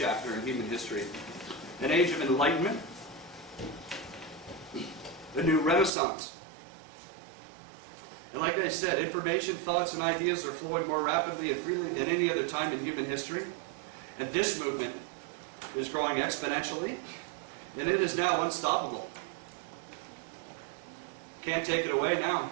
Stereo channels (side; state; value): left; drops out; at 5.9 s